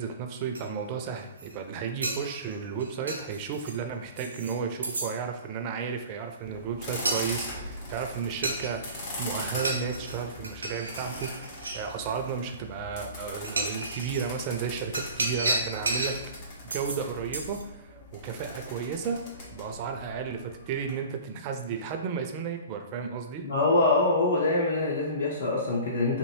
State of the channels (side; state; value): both; inverted; correlation -0.40